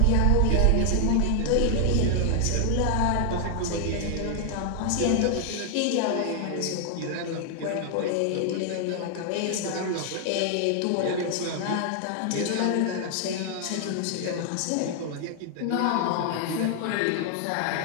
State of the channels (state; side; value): different; both; correlation 0.00